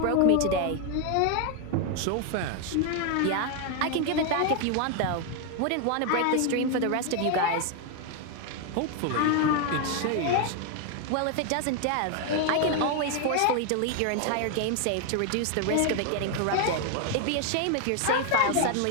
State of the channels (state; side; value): different; both; correlation 0.01